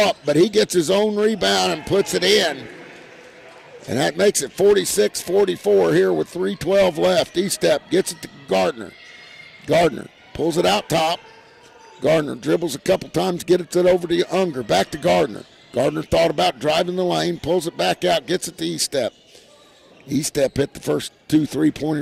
but he gets his own rebound and puts it in. And that makes it 46-44 here with 3:12 left. E-step gets it to Gardner. Gardner pulls it out top. Gardner dribbles a couple times, gets it over to Unger. Back to Gardner. Gardner thought about driving the lane, pulls it back out, gets it to E-step. E-step hit the first 2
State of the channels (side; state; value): both; identical; correlation 1.00